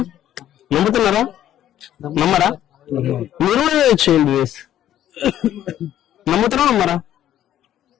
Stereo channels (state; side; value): quieter; right; 11.7 dB